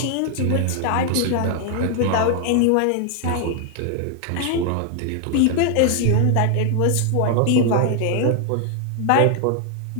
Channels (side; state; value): both; different; correlation 0.00